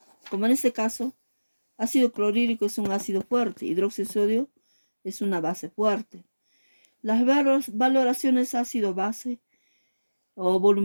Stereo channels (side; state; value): both; inverted; correlation -1.00